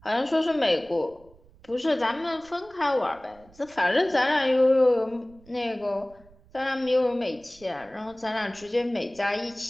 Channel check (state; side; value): noise; right; rumble, 27 dB below the sound